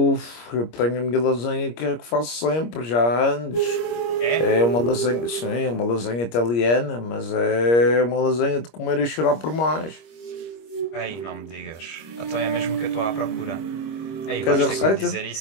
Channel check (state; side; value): late; right; 25 ms